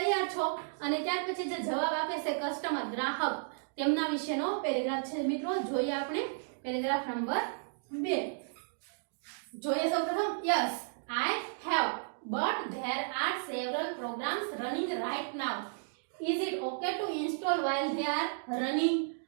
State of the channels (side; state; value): left; silent; digital silence